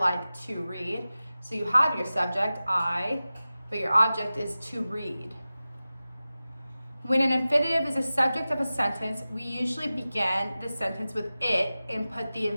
to read. So you have your subject, I, but your object is to read. When an infinitive is a subject of a sentence, we usually begin the sentence with it and put the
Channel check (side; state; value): both; inverted; correlation -0.96